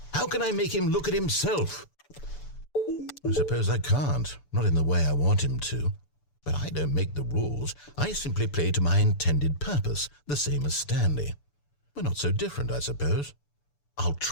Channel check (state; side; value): late; right; 6.9 ms